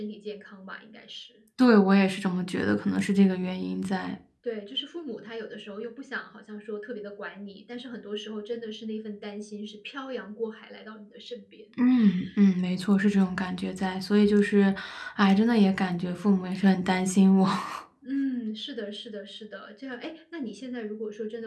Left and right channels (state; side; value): identical; both; correlation 1.00